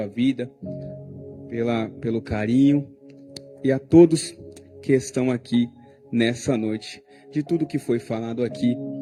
vida pelo carinho e a todos que estão aqui nessa noite. De tudo que foi falado aqui,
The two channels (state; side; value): identical; both; correlation 1.00